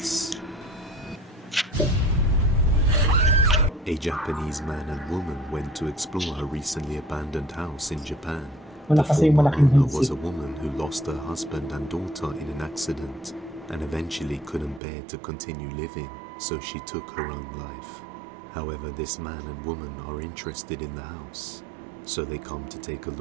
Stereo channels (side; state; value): left; drops out; at 14.8 s